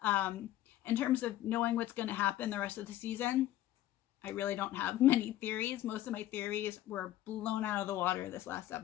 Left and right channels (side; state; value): right; quieter; 13.8 dB